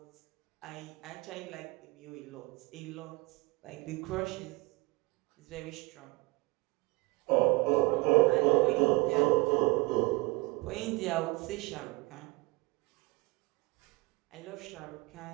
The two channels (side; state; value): left; quieter; 24.8 dB